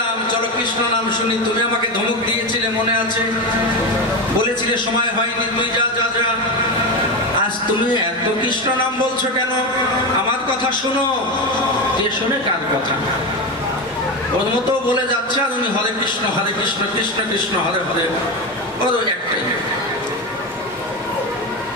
চলো কৃষ্ণ নাম শুনি, তুমি আমাকে ধমক দিয়েছিলে মনে আছে? বলেছিলে সময় হয়নি, তুই যা যা যা। আজ তুমি এত কৃষ্ণ নাম বলছো কেন? আমার কথা শোনো। কে শোনে কার কথা? ওর মতো বলে যাচ্ছে আর উনি হরে কৃষ্ণ কৃষ্ণ কৃষ্ণ হরে হরে, ওর একটাই।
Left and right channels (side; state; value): both; normal; correlation 0.17